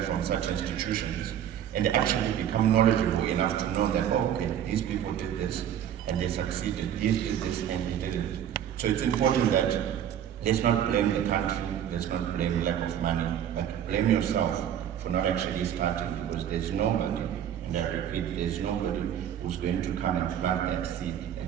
from such institutions and actually become knowledgeable enough to know that, oh, okay, these people did this and they succeeded, these did this and they didn't. So it's important that let's not blame the country, let's not blame lack of money, but blame yourself for not actually starting, because there's nobody, and I repeat, there's nobody who's going to come and plant that seed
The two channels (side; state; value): left; quieter; 10.0 dB